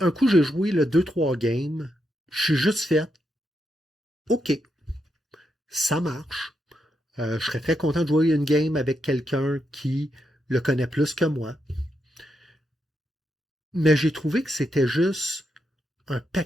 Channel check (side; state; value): both; normal; correlation 0.83